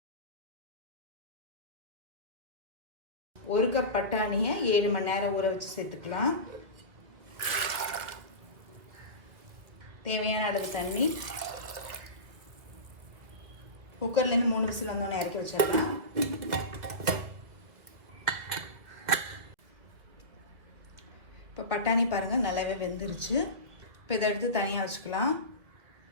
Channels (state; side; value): late; left; 1.8 ms